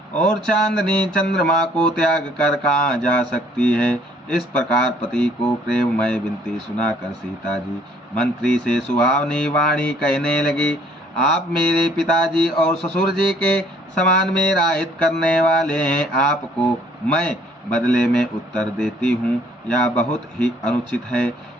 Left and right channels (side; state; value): both; normal; correlation 0.61